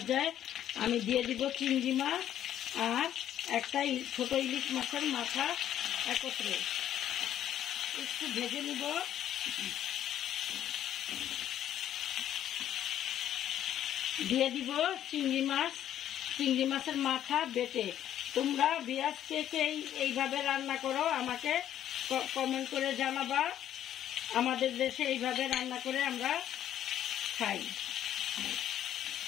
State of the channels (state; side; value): quieter; right; 11.1 dB